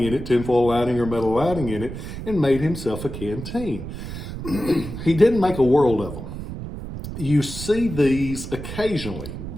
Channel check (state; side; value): noise; right; rumble, 9 dB below the sound